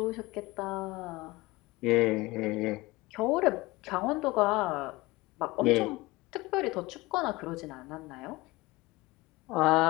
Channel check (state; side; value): quieter; right; 21.2 dB